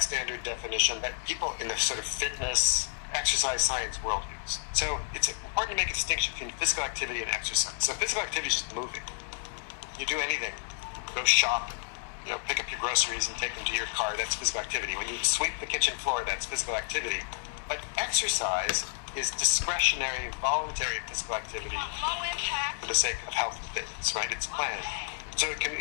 standard definition that people in the sort of fitness, exercise science world use. So it's important to make a distinction between physical activity and exercise. So physical activity is just moving. You do anything. Go shop, pick up your groceries and take them to your car. That's physical activity. When you sweep the kitchen floor, that's physical activity. But exercise is discretionary, voluntary physical activity for the sake of health and fitness, right? It's planned. So it can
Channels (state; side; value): silent; right; digital silence